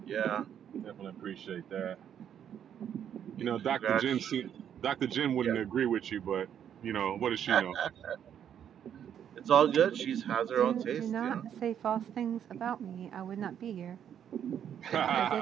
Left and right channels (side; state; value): left; quieter; 9.2 dB